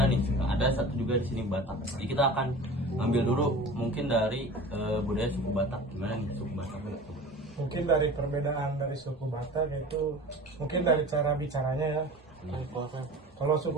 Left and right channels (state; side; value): normal; both; correlation 0.38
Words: nih. Ada satu juga di sini Batak. Jadi kita akan ambil dulu mungkin dari budaya suku Batak. Gimana nih suku Batak? Mungkin dari perbedaan dari suku Batak itu mungkin dari cara bicaranya ya. Kalau